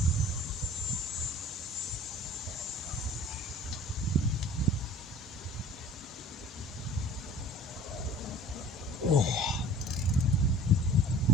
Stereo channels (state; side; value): normal; both; correlation 0.46